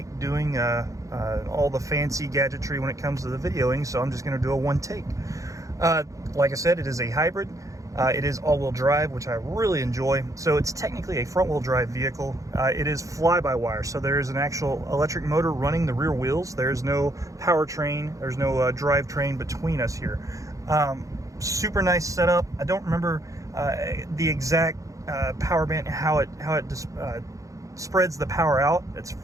doing all the fancy gadgetry when it comes to the videoing, so I'm just going to do a one take. Like I said, it is a hybrid. It is all-wheel drive, which I really enjoy. So it's technically a front-wheel drive vehicle. It is fly-by-wire, so there's an actual electric motor running the rear wheels. There's no powertrain, there's no drivetrain between us here. Super nice setup. I don't remember the exact power band, how it spreads the power out. It's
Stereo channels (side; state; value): left; late; 0.16 ms